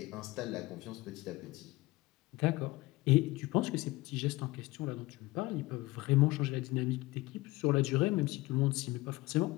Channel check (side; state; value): right; quieter; 20.4 dB